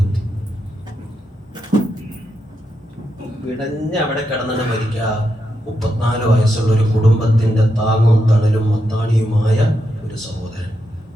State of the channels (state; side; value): normal; both; correlation 0.84